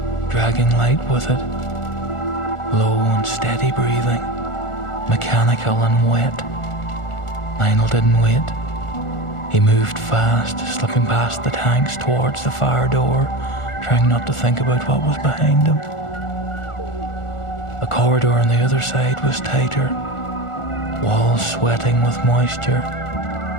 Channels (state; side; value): late; right; 1.4 ms